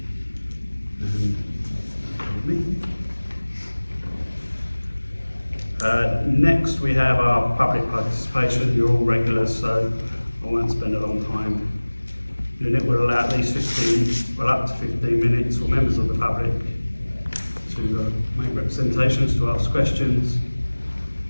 Next we have our public participation. You're all regulars, so I won't spend a long time. The unit will allow at least up to 15 minutes for members of the public to make representations, to ask questions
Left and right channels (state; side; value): inverted; both; correlation -1.00